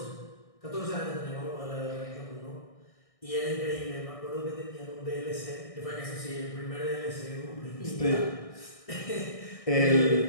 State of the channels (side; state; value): right; late; 1.6 ms